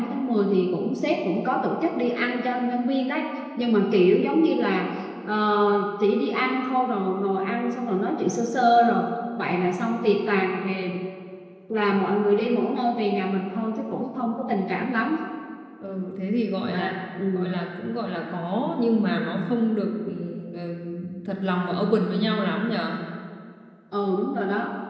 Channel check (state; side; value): identical; both; correlation 1.00